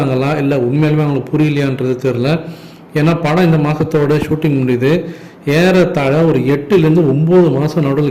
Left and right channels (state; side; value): identical; both; correlation 1.00